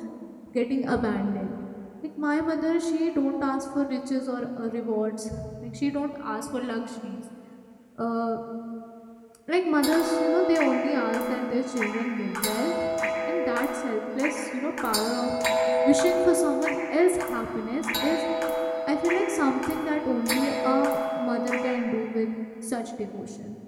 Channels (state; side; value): identical; both; correlation 1.00